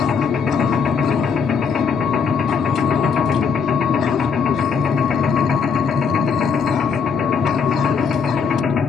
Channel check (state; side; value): quieter; right; 5.8 dB